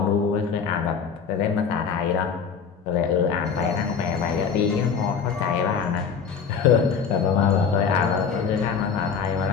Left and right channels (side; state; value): right; quieter; 6.4 dB